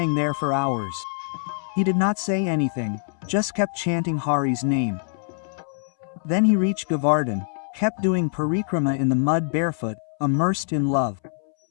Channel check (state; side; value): silent; right; 63 dB below the other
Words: there for hours. He did not say anything, just kept chanting Hari's name. Then he reached Govardhan, kept doing parikrama in the mud barefoot, immersed in love.